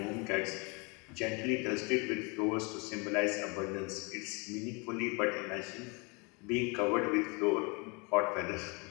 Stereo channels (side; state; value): right; quieter; 30.6 dB